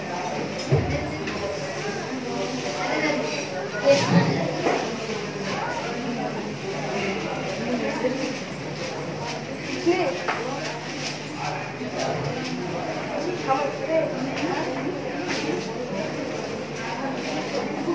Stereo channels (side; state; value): both; identical; correlation 1.00